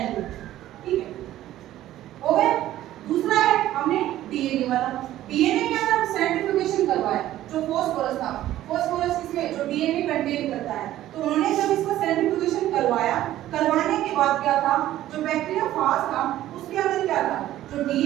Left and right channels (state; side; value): quieter; left; 13.8 dB